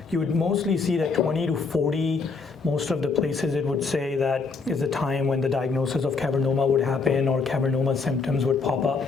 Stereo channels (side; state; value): right; quieter; 4.6 dB